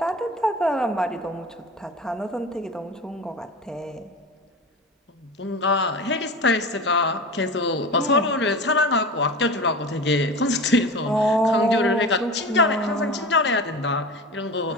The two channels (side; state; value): both; normal; correlation 0.31